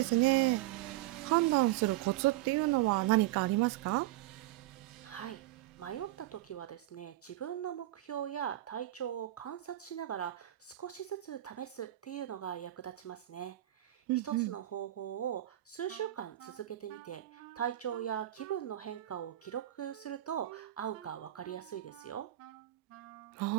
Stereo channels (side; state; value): left; quieter; 15.1 dB